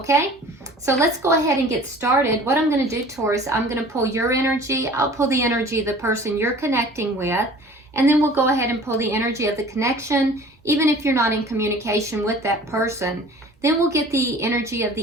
so let's go ahead and get started. What I'm going to do, Taurus, I'm going to pull your energy, I'll pull the energy of the person you're connecting with, and then we'll go ahead and pull the energy of the connection, even if you're not in communication with that person. Then we'll get the energy of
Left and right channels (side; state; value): both; normal; correlation 0.46